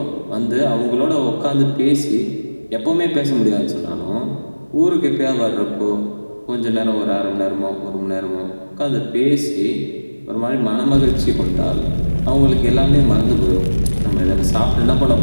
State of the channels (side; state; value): both; inverted; correlation -1.00